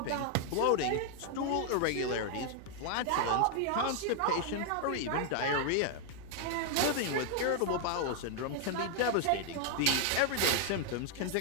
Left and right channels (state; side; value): different; both; correlation 0.00